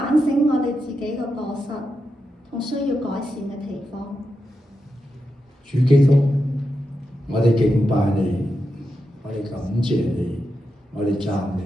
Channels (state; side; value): normal; both; correlation 0.88